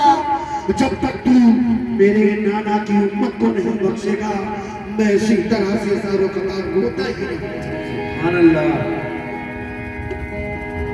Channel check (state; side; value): identical; both; correlation 1.00